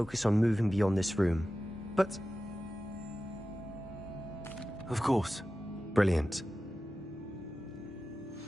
on moving beyond this room. But... Of course. Brilliant.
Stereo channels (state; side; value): normal; both; correlation 0.94